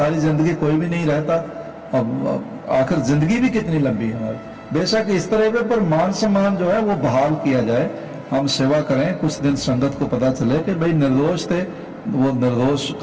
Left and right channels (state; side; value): identical; both; correlation 1.00